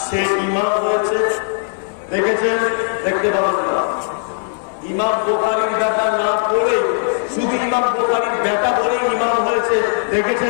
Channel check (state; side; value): silent; right; digital silence